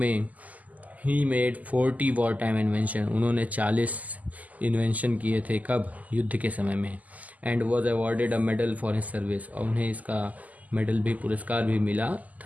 he made 40 war time invention. उन्होंने 40 इन्वेंशन किए थे, कब, युद्ध के समय में। And was awarded a medal for his service, और उन्हें इसका मेडल भी, पुरस्कार भी मिला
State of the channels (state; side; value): late; left; 0.077 ms